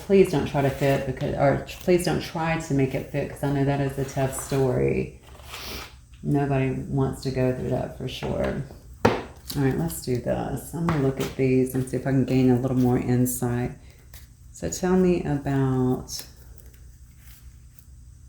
please don't try to fit, or please don't try to make it fit, because I know that is a tough story. Nobody wants to go through that for sure. All right, let's do this. I'm going to look at these and see if I can gain a little more insight. So tell me about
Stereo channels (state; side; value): identical; both; correlation 1.00